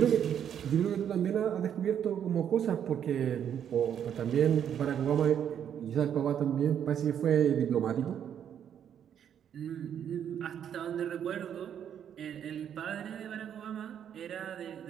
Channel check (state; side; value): quieter; left; 9.1 dB